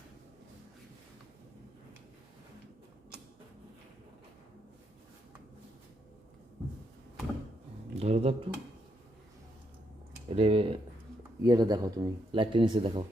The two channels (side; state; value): both; normal; correlation 0.78